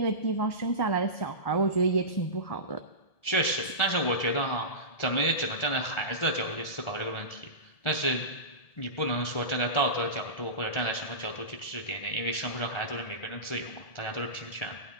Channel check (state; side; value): late; right; 1.7 ms